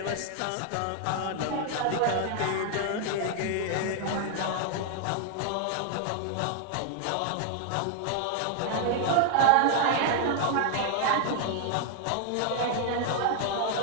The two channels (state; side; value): different; both; correlation 0.00